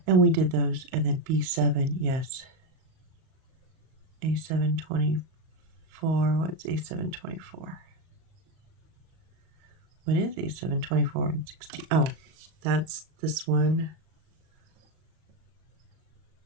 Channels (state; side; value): late; left; 38 ms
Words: and we did those, and then B7, yes. A7, 24, what's A7, 24? What is A7, 24, and 16? Oh, that's this one.